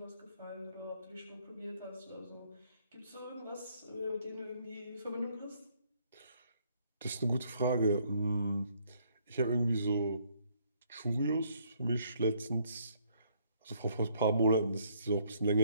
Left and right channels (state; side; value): inverted; both; correlation -0.67